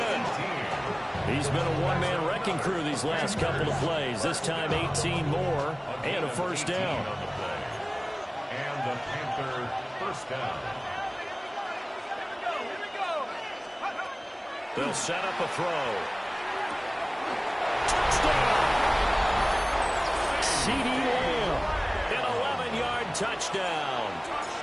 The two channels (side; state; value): both; identical; correlation 1.00